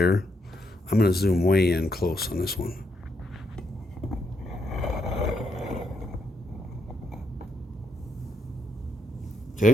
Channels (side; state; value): both; normal; correlation 0.78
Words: I'm going to zoom way in close on this one.